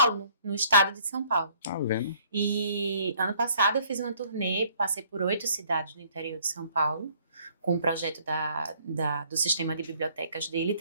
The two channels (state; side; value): inverted; both; correlation -0.61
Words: no estado de São Paulo. Tá vendo? E ano passado eu fiz uma turnê, passei por 8 cidades no interior de São Paulo, com um projeto do sistema de bibliotecas dele,